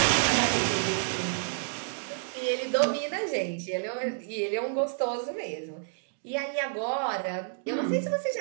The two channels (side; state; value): left; silent; digital silence